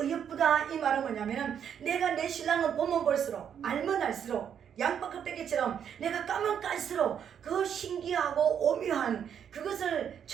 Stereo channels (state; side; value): quieter; left; 8.4 dB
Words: 이 말은 뭐냐면은 내가 내 신랑을 보면 볼수록 알면 알수록 양파 껍데기처럼 내가 까면 깔수록 그 신기하고 오묘한 그것을